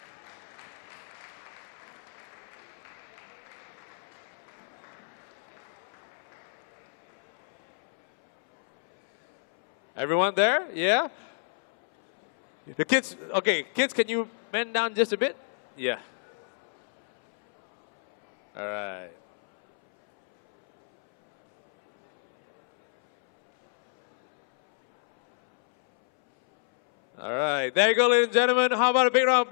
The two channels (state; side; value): silent; right; 59 dB below the other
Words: Everyone there? Yeah? The kids, okay, kids, can you bend down just a bit? Yeah. All right. All right, there you go, ladies and gentlemen. How about a big round of